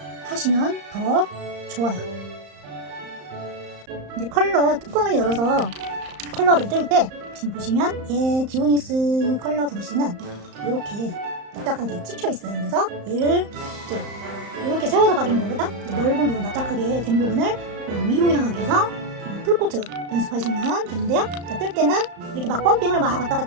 하시면 더 좋아요. 이제 컬러 뚜껑을 열어서 컬러를 뜰 때 지금 보시면 얘 지오닉스 컬러 브러쉬는 이렇게 납작하게 찍혀 있어요. 그래서 얘를 이제 이렇게 세워서 바르는 것보다 넓은 부분, 납작하게 된 부분을 위로 향하게 해서 풀코트 연습하시면 되는데요. 자, 뜰 때는 이렇게 막 펌핑을 막 왔다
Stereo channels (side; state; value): left; late; 35 ms